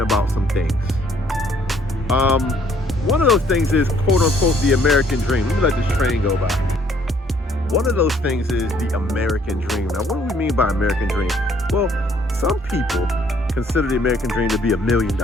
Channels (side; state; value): both; normal; correlation 0.63